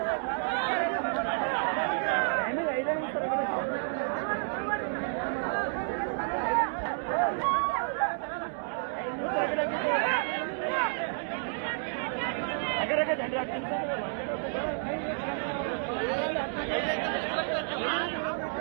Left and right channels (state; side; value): silent; left; digital silence